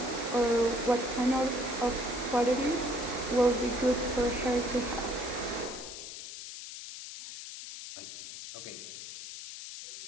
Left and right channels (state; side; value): noise; left; hiss, 10 dB below the sound